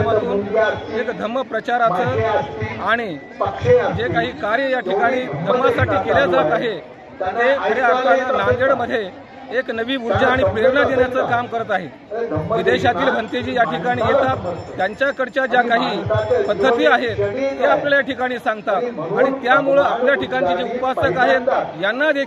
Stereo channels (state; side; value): identical; both; correlation 1.00